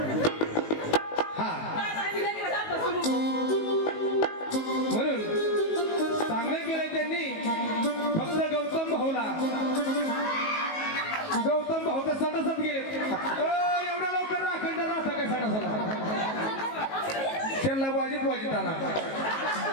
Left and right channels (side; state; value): right; late; 19 ms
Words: हा म्हणून चांगलं केलंय त्यांनी फक्त गौतम भाऊ तर सटासट गेले एवढ्या लवकर अखंड राहता काय सटासला त्यांना वाजित आणा